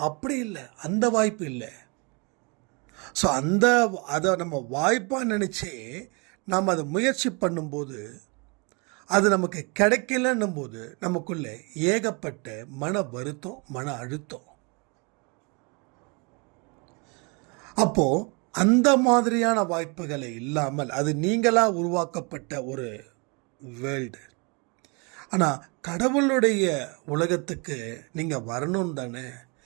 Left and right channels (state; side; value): quieter; left; 31.6 dB